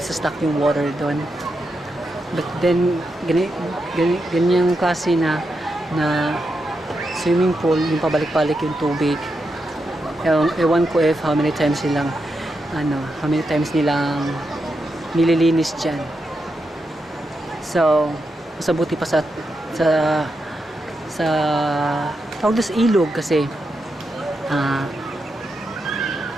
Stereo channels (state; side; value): normal; both; correlation 0.85